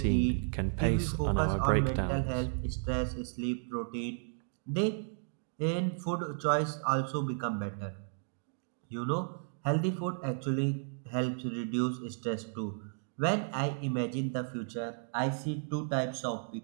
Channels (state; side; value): silent; left; digital silence